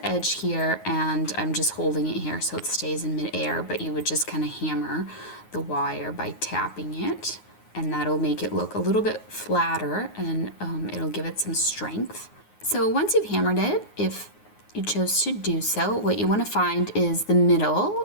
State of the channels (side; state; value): right; late; 9.5 ms